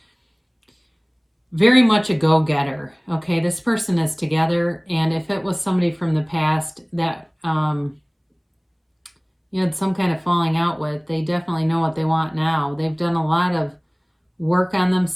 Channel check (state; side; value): identical; both; correlation 1.00